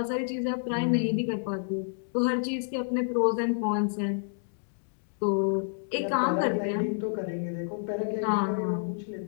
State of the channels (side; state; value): right; silent; digital silence